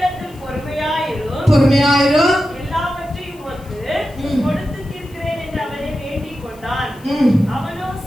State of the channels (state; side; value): noise; left; hiss, 26 dB below the sound